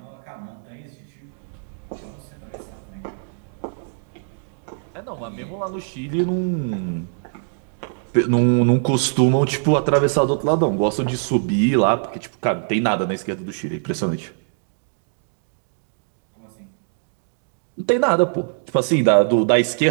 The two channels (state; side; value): silent; left; digital silence